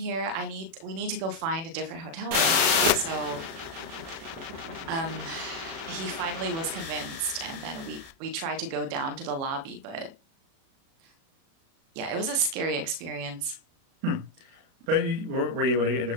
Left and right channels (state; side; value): late; left; 36 ms